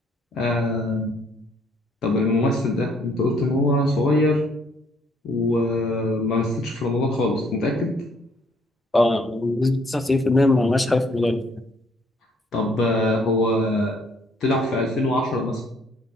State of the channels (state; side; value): normal; both; correlation 0.65